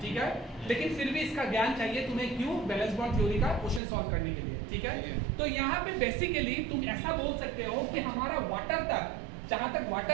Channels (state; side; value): drops out; left; at 3.8 s